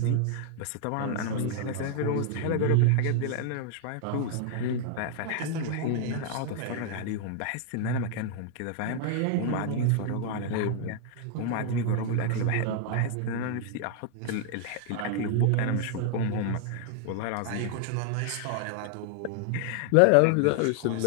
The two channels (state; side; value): different; both; correlation 0.00